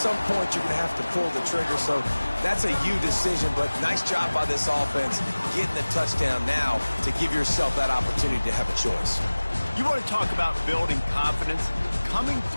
point you're going to have to pull the trigger. So that's a you decision, but nice job by this offense getting the touchdown now to give yourself that opportunity to have a choice. You want to talk about building confidence? Coming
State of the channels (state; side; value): inverted; both; correlation -1.00